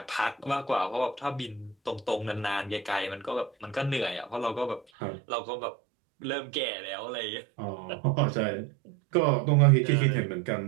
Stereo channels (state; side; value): drops out; left; at 4.9 s